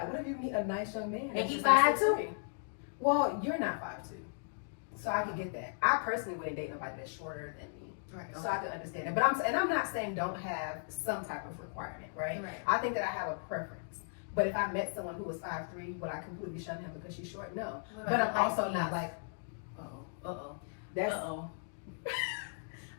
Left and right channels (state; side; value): silent; right; digital silence